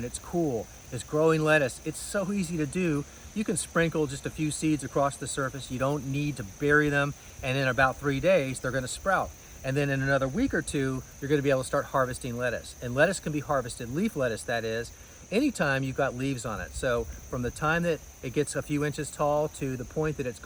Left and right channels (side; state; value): both; identical; correlation 1.00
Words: it's cool, is growing lettuce. It's so easy to do. You can sprinkle just a few seeds across the surface. You don't need to bury them, and in about 3 days, they're gonna sprout. And then in another week or two, you're gonna be able to start harvesting lettuce. And lettuce can be harvested, leaf lettuce that is, anytime you've got leaves on it. So from the time that it gets a few inches tall to the point that it's